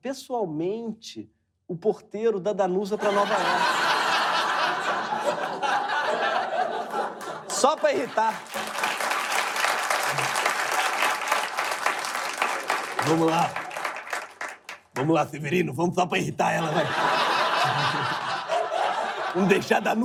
o porteiro da Danusa para Nova York. Só para irritar. Vamos lá. Vamos lá, Severino. Vamos só para irritar ela, vai. Vamos deixar a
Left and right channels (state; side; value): identical; both; correlation 1.00